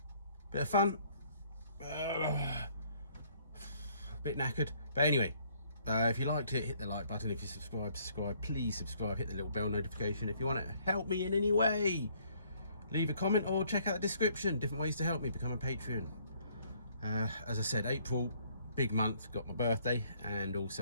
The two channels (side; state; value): both; inverted; correlation -0.64